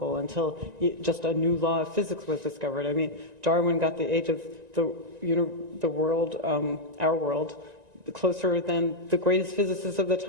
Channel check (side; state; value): left; late; 1.9 ms